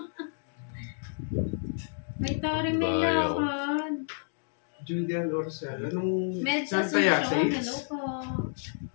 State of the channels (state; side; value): silent; right; digital silence